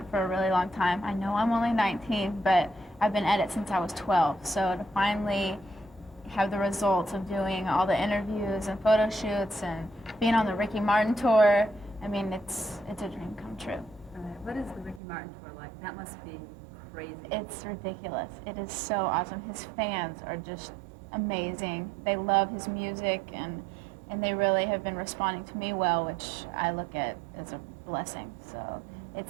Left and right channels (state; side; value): drops out; left; at 15.0 s